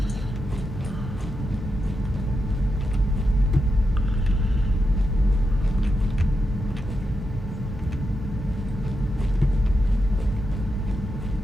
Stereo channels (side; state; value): both; normal; correlation 0.86